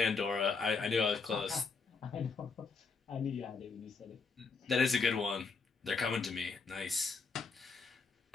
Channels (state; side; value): quieter; right; 4.7 dB